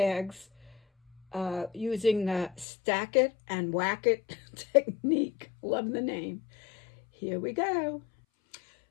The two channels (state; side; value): drops out; right; at 2.7 s